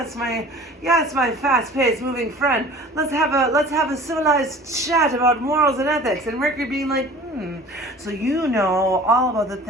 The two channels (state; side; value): normal; both; correlation 0.44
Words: my fast-paced moving friend. Let's have a civilized chat about morals and ethics. And Mercury being like, so all about the